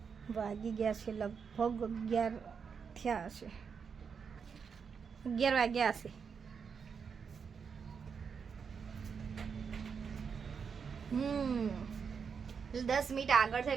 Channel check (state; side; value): quieter; left; 6.2 dB